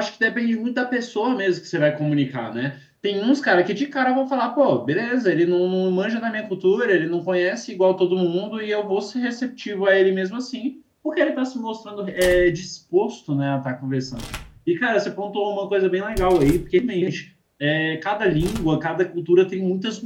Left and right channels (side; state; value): both; identical; correlation 1.00